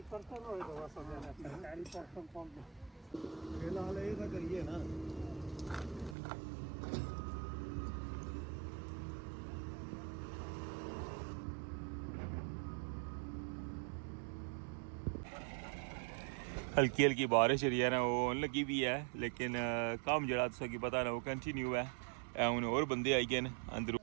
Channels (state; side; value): drops out; left; at 6.2 s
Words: पर्सन होए तो बस सरकारी पर्सन कौन फिलहाल ये तो करिए ना। हल्की हल्की बारिश जी है ना वो लगी भी है, लेकिन कम जरा तुसा की पता ना वो कंटिन्यू है। हूँ और बंदे आई गए अंदर,